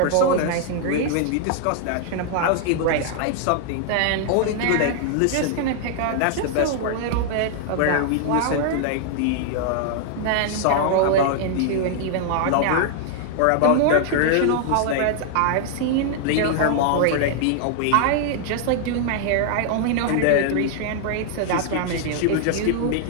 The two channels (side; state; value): both; different; correlation 0.00